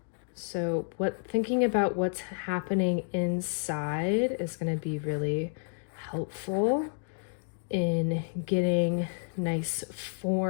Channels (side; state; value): right; silent; digital silence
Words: So thinking about what's happening inside is going to be really helpful in getting nice